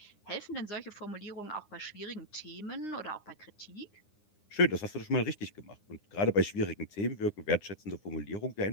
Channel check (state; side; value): late; right; 9.7 ms